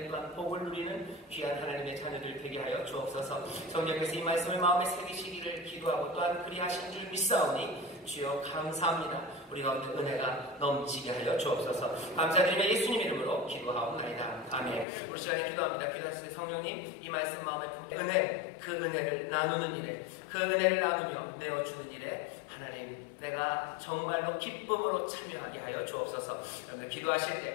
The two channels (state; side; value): drops out; right; at 14.9 s